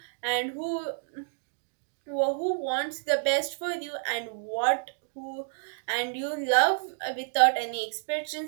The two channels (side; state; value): left; silent; digital silence